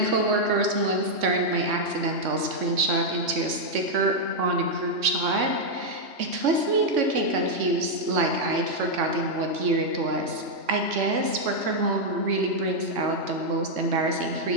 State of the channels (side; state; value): left; late; 3.6 ms